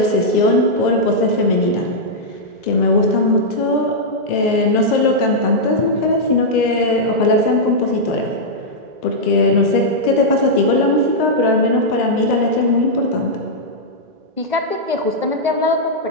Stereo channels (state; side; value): late; left; 2.0 ms